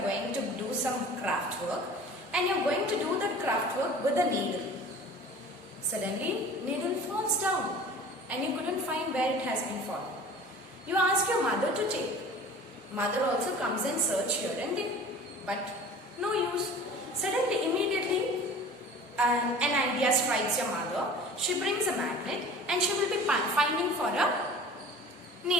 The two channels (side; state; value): both; normal; correlation 0.42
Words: going to do some craft work, and you are going to do the craft work with a needle. Suddenly, needle falls down and you couldn't find where it has been fallen. You ask your mother to take. Mother also comes and search here and there, but no use. Suddenly, immediately, an idea strikes your mother. She brings a magnet and she will be finding for a